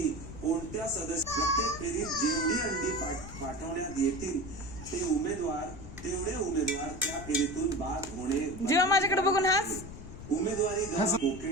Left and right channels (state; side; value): noise; left; rumble, 12 dB below the sound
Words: कोणत्या सदस्य प्रत्येक फेरीत जेवढी अंडी पाठवण्यात येतील तेवढे उमेदवार त्या फेरीतून बाद होणे। जेव्हा माझ्याकडे बघून हास उमेदवारी